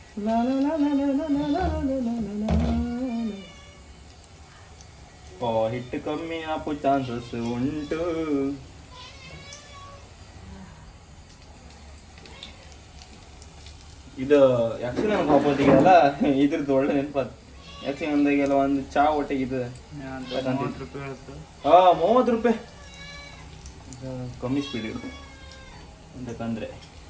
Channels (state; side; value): identical; both; correlation 1.00